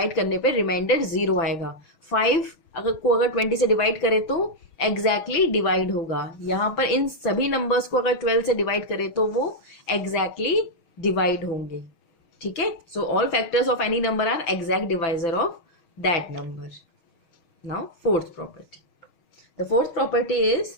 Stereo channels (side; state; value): right; late; 6.3 ms